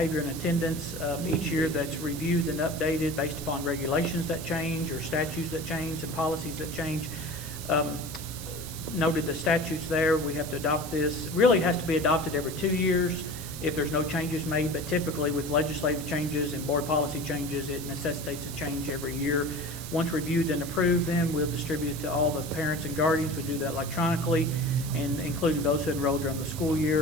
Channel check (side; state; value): right; noise; hiss, 11 dB below the sound